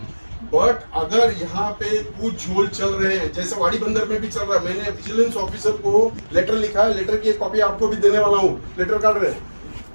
बट अगर यहाँ पे कुछ झोल चल रहे हैं, जैसे वाड़ी बंदर में भी चल रहा है, मैंने विजिलेंस ऑफिसर को लेटर लिखा है, लेटर की एक कॉपी आपको भी देने वाला हूँ, लेटर काट रहे हैं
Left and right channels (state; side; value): inverted; both; correlation -1.00